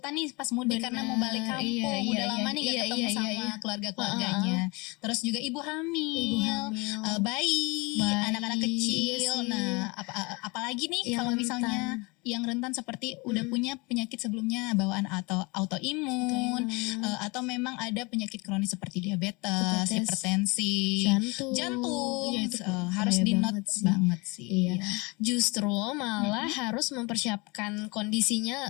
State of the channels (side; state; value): right; quieter; 27.1 dB